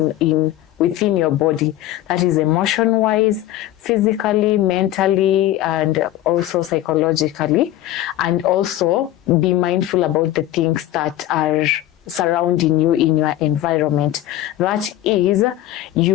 within your body. That is emotion-wise, physically, mentally, and also psychologically. And also be mindful about the things that are surrounding you in your environment. That is,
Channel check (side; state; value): right; quieter; 13.9 dB